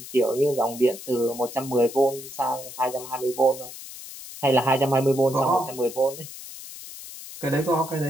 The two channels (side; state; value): left; noise; hiss, 13 dB below the sound